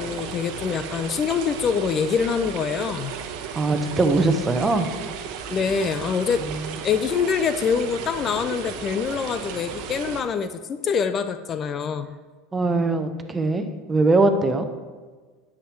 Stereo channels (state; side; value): normal; both; correlation 0.61